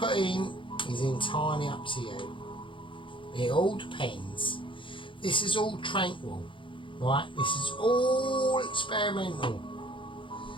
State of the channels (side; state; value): right; late; 0.24 ms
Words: in is entirely up to you. It all depends. This is all tranquil, right? This is all experimental.